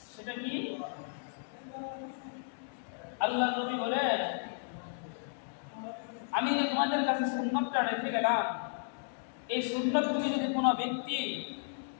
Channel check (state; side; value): silent; right; digital silence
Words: সেটা কি? আল্লাহ নবী বলেন, আমি যে তোমাদের কাছে সুন্নতটা রেখে গেলাম, এই সুন্নতগুলি যদি কোনো ব্যক্তি,